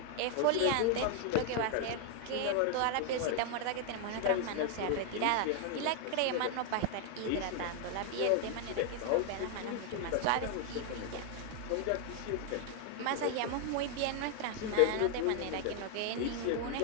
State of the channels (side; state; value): both; different; correlation 0.00